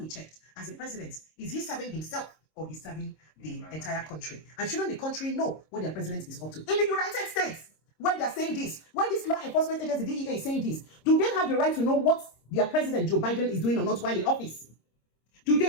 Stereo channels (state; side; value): late; right; 26 ms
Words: checked, as a president, is he serving himself or he's serving the entire country? And shouldn't the country know what their president is up to? In the United States, where they're saying this, where this law enforcement agency, DEA, is saying this, do they have the right to know what their president, Joe Biden, is doing or not while in office? Do they